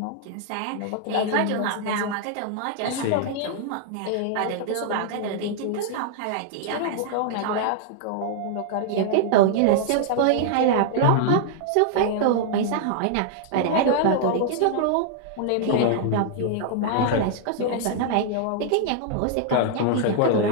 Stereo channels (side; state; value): both; different; correlation -0.01